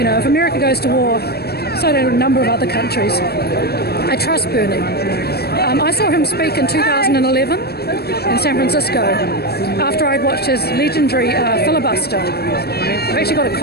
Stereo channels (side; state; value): right; late; 0.46 ms